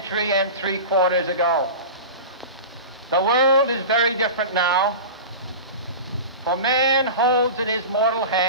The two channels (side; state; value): both; inverted; correlation -0.31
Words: and 3/4 ago. The world is very different now, for man holds in his mortal